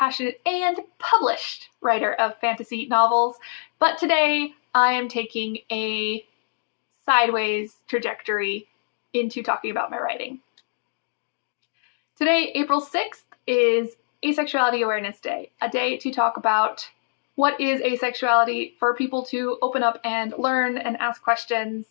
and published writer of fantasy novels. But today I am taking a sideways trajectory into talking about my writing. Today, April 6th, is Asexuality Awareness Day, a day to talk about what is asexuality, for people to open up and learn and ask questions,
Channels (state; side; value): silent; right; digital silence